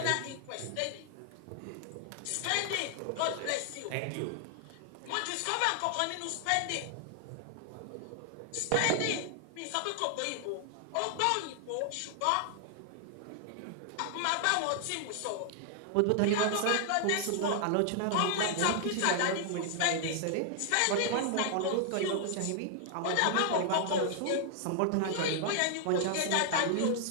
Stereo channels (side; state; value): both; different; correlation 0.00